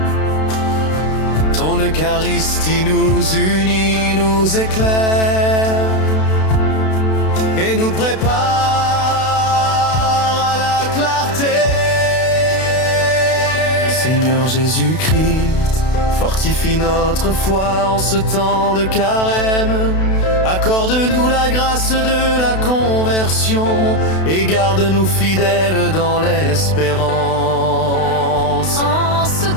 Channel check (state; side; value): late; right; 32 ms